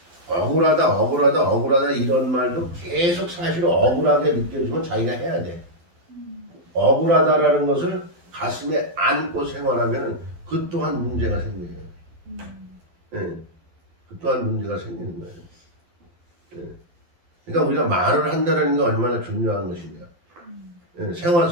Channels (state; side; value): late; left; 12 ms